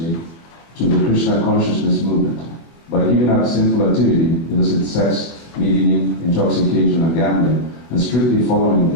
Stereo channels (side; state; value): right; late; 23 ms